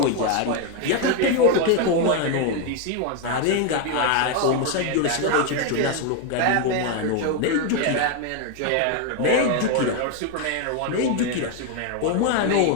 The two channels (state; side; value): different; both; correlation 0.01